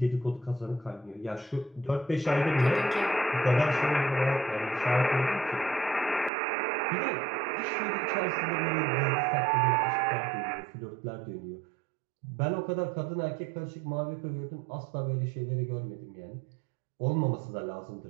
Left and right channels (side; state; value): left; drops out; at 6.3 s